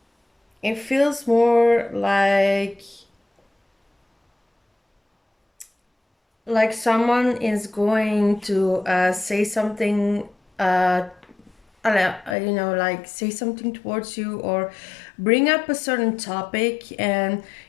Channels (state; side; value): drops out; right; at 12.4 s